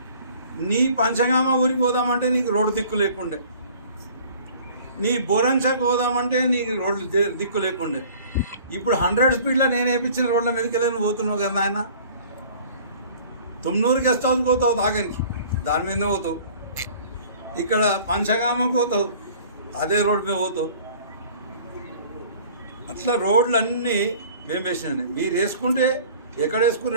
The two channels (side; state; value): both; inverted; correlation -0.49